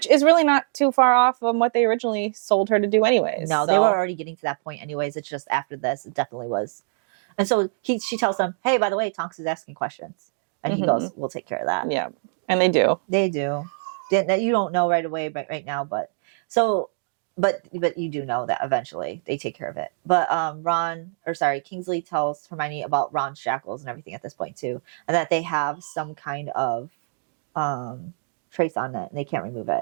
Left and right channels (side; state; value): left; silent; digital silence